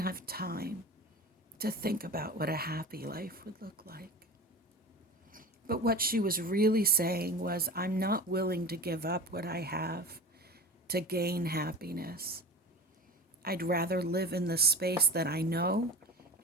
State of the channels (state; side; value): normal; both; correlation 0.32